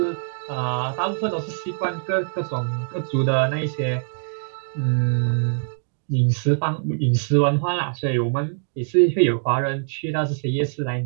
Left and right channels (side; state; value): left; silent; digital silence